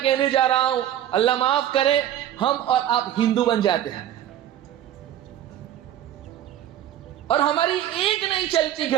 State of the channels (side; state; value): left; quieter; 11.5 dB